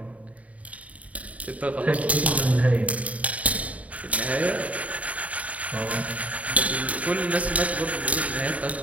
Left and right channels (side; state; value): left; late; 0.068 ms